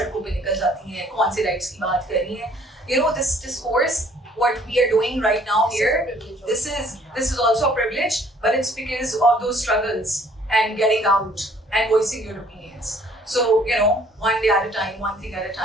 पे निकल जाती हैं, कौन से rights की बात कर रही हैं. This discourse, what we are doing right now here, this is also a privilege, but it's because of those struggles and getting out and voicing your opinions. So, one day at a time, one thing at a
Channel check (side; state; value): both; normal; correlation 0.59